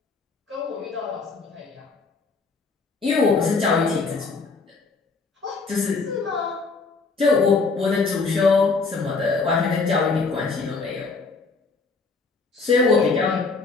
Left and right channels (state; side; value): quieter; right; 4.2 dB